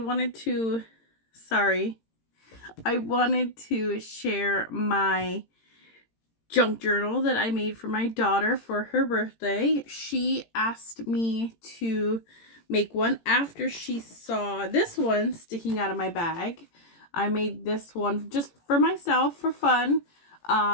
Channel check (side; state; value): right; late; 18 ms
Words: to, sorry, I wanted to share my junk journal that I made for my daughter for her birthday. She asked me to make one after she saw this one sticking out of my bag. I made this one just for myself for fun.